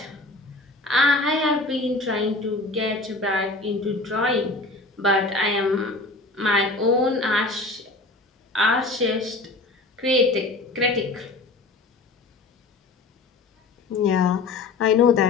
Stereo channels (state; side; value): quieter; right; 3.3 dB